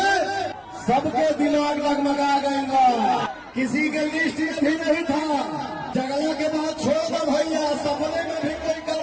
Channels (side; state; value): both; identical; correlation 1.00